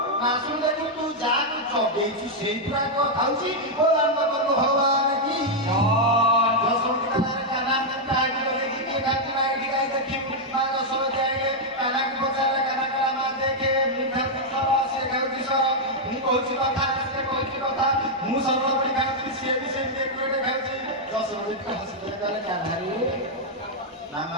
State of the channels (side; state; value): both; normal; correlation -0.02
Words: ନାଶୁଣି ଦେଖୁ ତୁ ଯାହାକୁ ଜଗେଇଛୁ ସେଇ ପୁରା ଖାଉଛି ଓ ରାମଚନ୍ଦ୍ର ଭଗବାନ କି ଦଶମୀ କାହ୍ନା କାହାକୁ ଜଗେଇକି କିଏ ଖାଉଛି ନା ଏଠି କାହିଁ ଦେଖିବୁ ମା ଦଶମୀ ଆଇଲେ କାହ୍ନାକୁ ପଚାରିଲେ କାହ୍ନା କହିଲା ମା ଦେଖେ ମୁଁ ଖାଉଛି ସର ସେ ଖାଉଛି ସର ମୁଁ କହୁଛି କଥା ସେ କହୁଛି କଥା ମୁଁ ସରଳବଣୀ ଖାଉଛି ସିଏ ବି ସେମିତି ଏକୁଟେ ଖାଉଛି। ଦଶମୀ ହସିଲେ କହିଲେ କାହ୍ନାରେ ନା